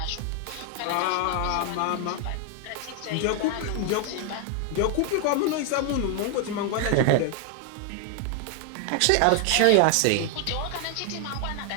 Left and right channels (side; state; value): both; different; correlation 0.00